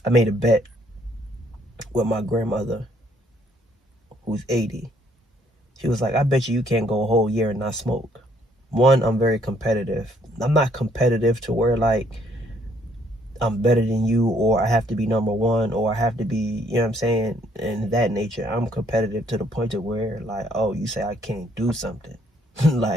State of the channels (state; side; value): normal; both; correlation 0.67